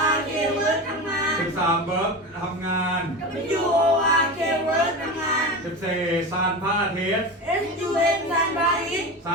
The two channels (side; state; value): both; normal; correlation 0.25